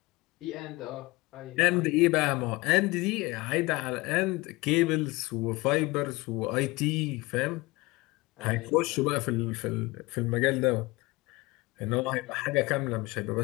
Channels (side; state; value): right; quieter; 22.6 dB